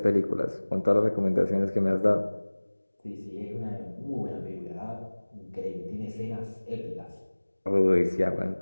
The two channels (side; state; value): both; inverted; correlation -1.00